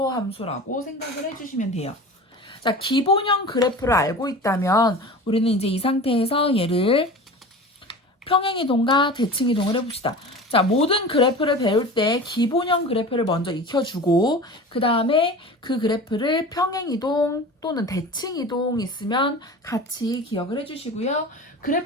생각을 해주시면 돼요. 자, 기본형 그래프를 알고 있다면 우리는 이제 이 상태에서 얘를 평행이동과 대칭이동을 해봅시다. 자, 모든 그래프를 배울 때 기본형 그래프를 먼저 익혀주고 그 다음에 그 그래프를 평행이동 또는 대칭이동 있으면 같이 기억을 해주시고요.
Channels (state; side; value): normal; both; correlation 0.35